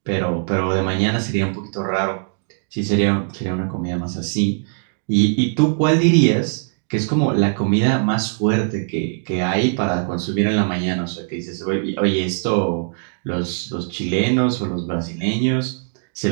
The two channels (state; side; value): silent; left; digital silence